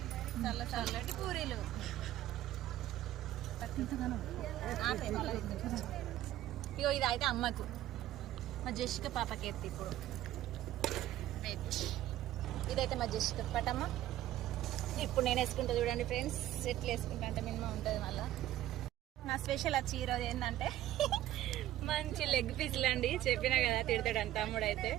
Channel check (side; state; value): left; quieter; 13.8 dB